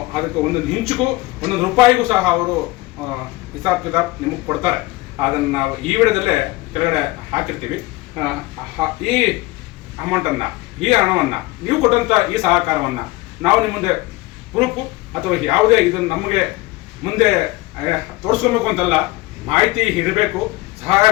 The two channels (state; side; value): quieter; right; 20.8 dB